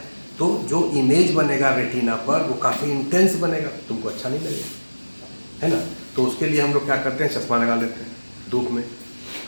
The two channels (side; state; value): both; inverted; correlation -1.00